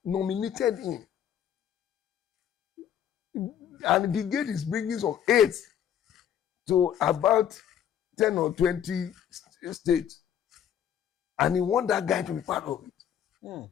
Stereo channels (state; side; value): quieter; right; 9.5 dB